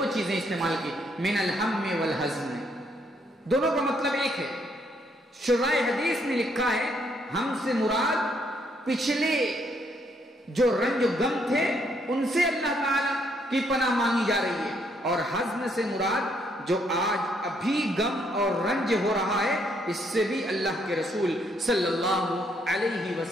چیزیں استعمال کی، من الہم والحزن، دونوں کا مطلب ایک ہے۔ شرائع حدیث نے لکھا ہے ہم سے مراد پچھلے جو رنج و غم تھے ان سے اللہ تعالی کی پناہ مانگی جا رہی ہے، اور حزن سے مراد جو آج ابھی غم اور رنج ہو رہا ہے اس سے بھی اللہ کے رسول صلی اللہ علیہ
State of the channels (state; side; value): normal; both; correlation 0.71